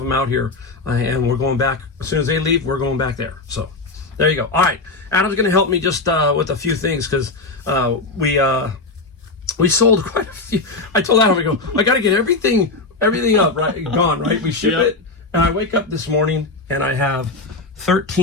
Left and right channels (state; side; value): quieter; right; 3.5 dB